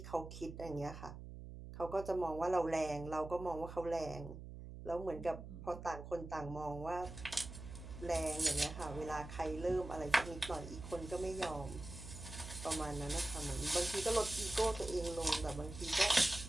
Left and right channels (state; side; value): noise; right; hum, 11 dB below the sound